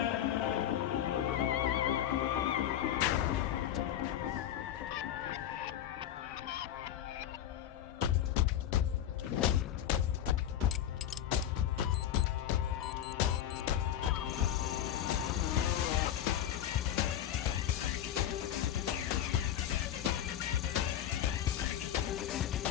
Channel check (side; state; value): right; quieter; 11.0 dB